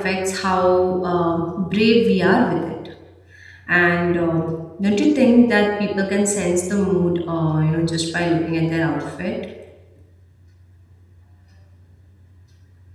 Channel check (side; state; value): both; identical; correlation 1.00